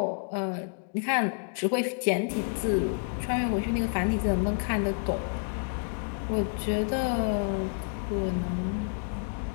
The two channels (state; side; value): silent; right; 58 dB below the other